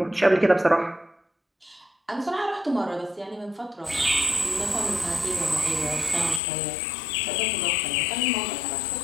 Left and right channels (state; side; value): drops out; right; at 6.4 s